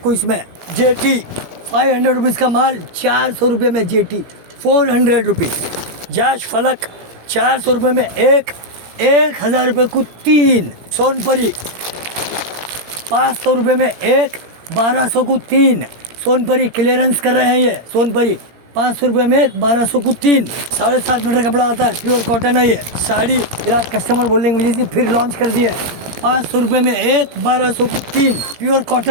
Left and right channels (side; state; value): left; late; 17 ms